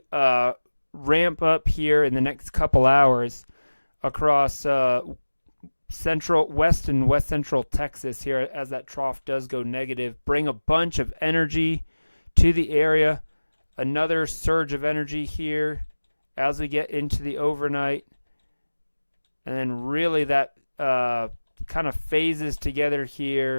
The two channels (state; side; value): inverted; both; correlation -1.00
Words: ramp up here in the next couple hours across west and west central Texas here as that trough does go negative. Bring a bunch of energy to the area. Another surge of energy here as we get into the overnight. And then really that kind of phases together